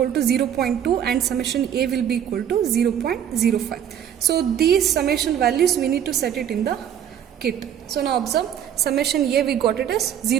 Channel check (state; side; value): quieter; left; 9.5 dB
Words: to 0.2 and summation A will be equal to 0.05. So these summation values we need to set it in the kit. So now observe, summation A we got it as